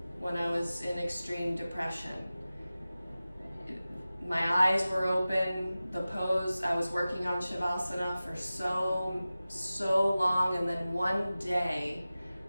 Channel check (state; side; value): inverted; both; correlation -0.96